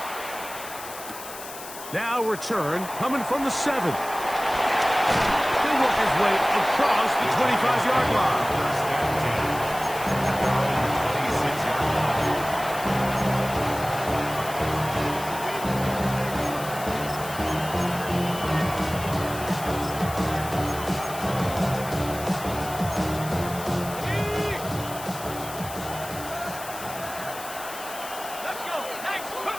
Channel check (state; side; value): noise; left; hiss, 12 dB below the sound